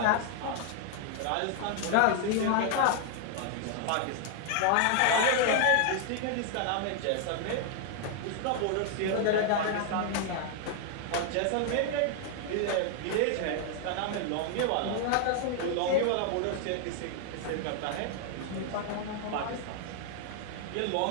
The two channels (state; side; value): different; both; correlation 0.00